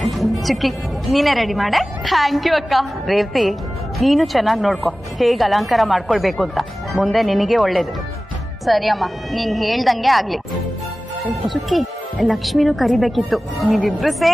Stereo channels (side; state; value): both; normal; correlation 0.97